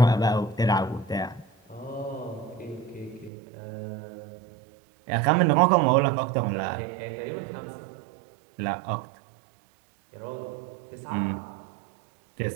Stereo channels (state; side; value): drops out; left; at 3.3 s